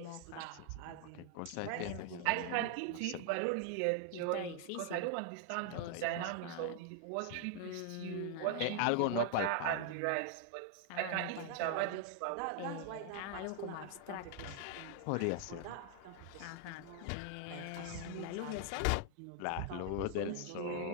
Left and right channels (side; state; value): both; different; correlation 0.00